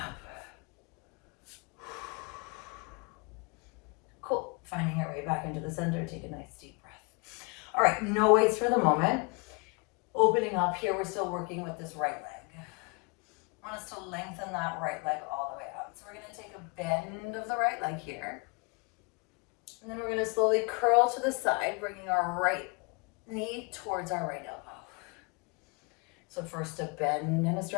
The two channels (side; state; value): right; quieter; 31.6 dB